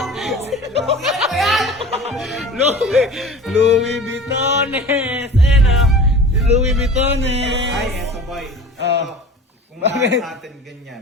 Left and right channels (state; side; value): normal; both; correlation 0.38